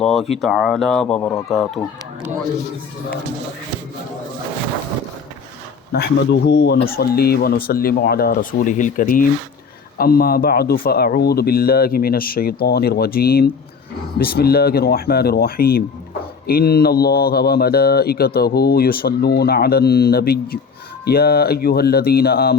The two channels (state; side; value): quieter; right; 5.5 dB